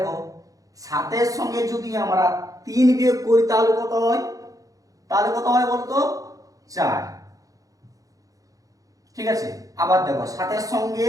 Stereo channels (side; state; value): left; late; 0.17 ms